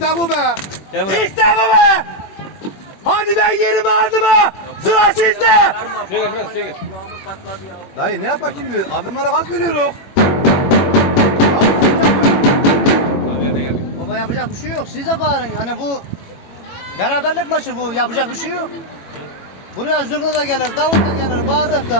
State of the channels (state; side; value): late; right; 21 ms